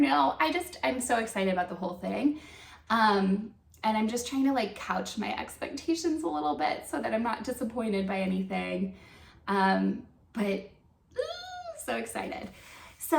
know, I'm so excited about the whole thing. And I'm just trying to like couch my expectations a little bit so that I'm not disappointed by anything. But so excited. So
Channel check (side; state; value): both; identical; correlation 1.00